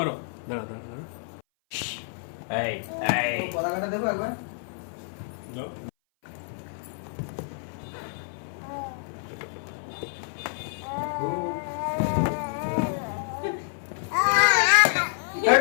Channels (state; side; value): silent; right; 57 dB below the other